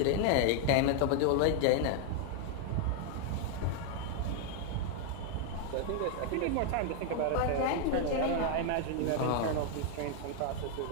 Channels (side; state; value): both; different; correlation 0.00